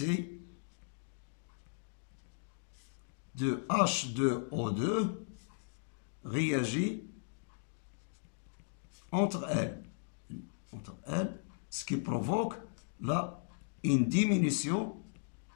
de H2O2 réagit entre elles, ce qui provoque une diminution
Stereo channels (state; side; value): silent; right; digital silence